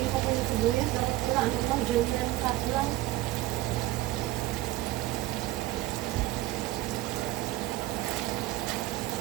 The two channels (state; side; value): quieter; left; 16.8 dB